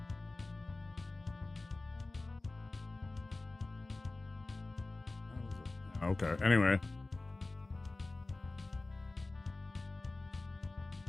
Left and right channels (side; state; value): right; quieter; 3.1 dB